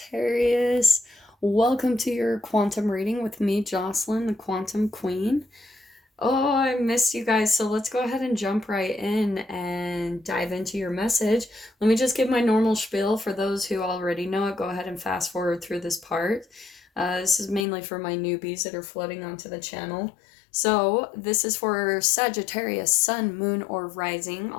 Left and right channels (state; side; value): drops out; right; at 17.7 s